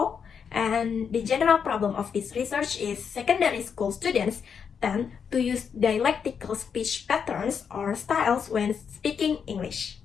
and the general problem of this research is secondary school students tend to use dialectical speech patterns or styles when speaking English.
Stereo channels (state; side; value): quieter; right; 6.8 dB